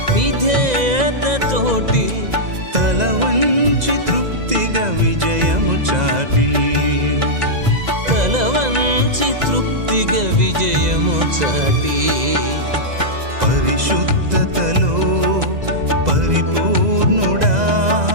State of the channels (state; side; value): late; left; 2.0 ms